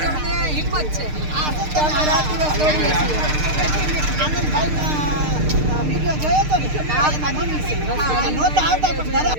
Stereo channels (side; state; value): left; late; 6.6 ms